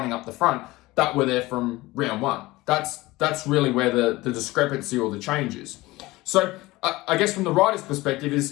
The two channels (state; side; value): quieter; right; 19.7 dB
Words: up the front that were there from round 1. That's really where the discrepancy or the change is. So I guess from the rider's perspective